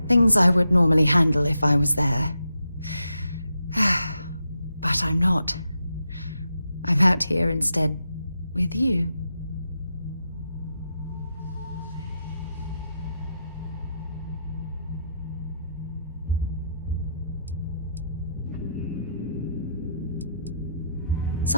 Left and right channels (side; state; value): both; inverted; correlation -0.82